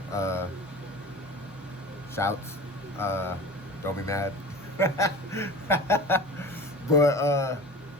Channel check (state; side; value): normal; both; correlation 0.37